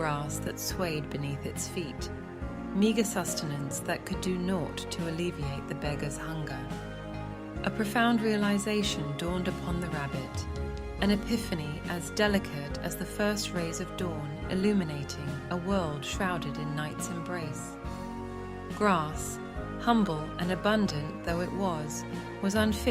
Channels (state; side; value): identical; both; correlation 1.00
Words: that swayed beneath its feet, meager sustenance that could do naught to alleviate the beggar's hunger. A profound realization dawned upon the rabbit, an epiphany as delicate as the first rays of dawn illuminating a world shrouded in night's embrace. Grass, humble and abundant though it was